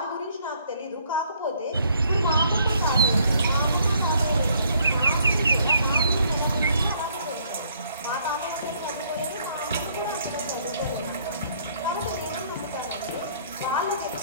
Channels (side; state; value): both; inverted; correlation -0.64